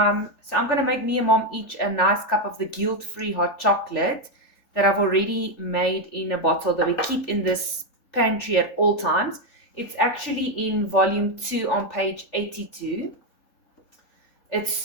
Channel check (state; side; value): late; right; 3.4 ms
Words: going to make me and Mom each a nice cup of the guilt-free hot chocolate that I've already made in a bottle that we keep in this pantry at all times. It's actually in volume 2 on page 82.